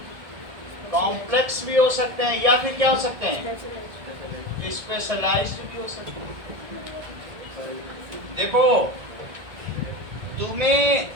कॉम्प्लेक्स भी हो सकते हैं, या फिर क्या हो सकते हैं, स्पेशलाइज्ड भी हो सकते हैं। देखो, तुम्हें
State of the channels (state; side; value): late; left; 1.7 ms